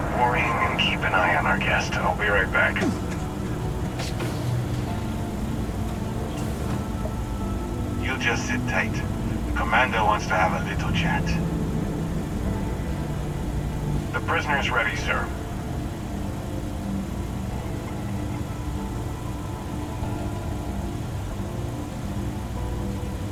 worrying and keep an eye on our guest. I'll be right back. You just sit tight. The commander wants to have a little chat. The prisoner's ready, sir.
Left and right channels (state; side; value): identical; both; correlation 1.00